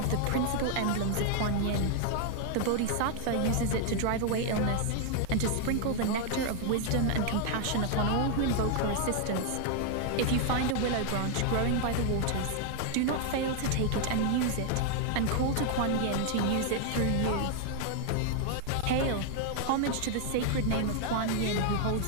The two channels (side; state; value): both; different; correlation 0.00